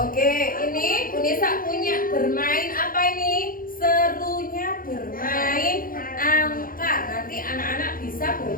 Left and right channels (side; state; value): right; late; 0.41 ms